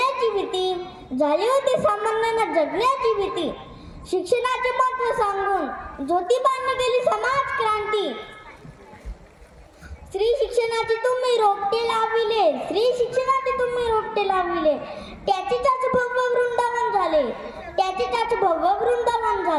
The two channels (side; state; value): both; identical; correlation 1.00